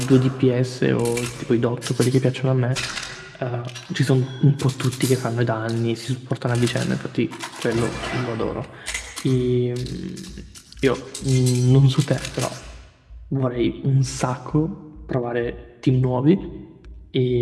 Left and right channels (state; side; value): identical; both; correlation 1.00